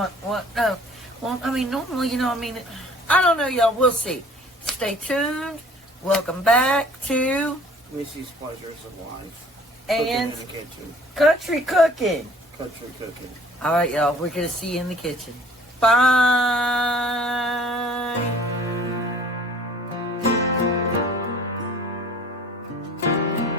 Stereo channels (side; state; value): both; normal; correlation 0.52